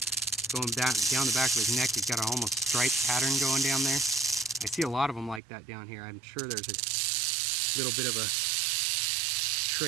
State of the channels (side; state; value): left; drops out; at 5.4 s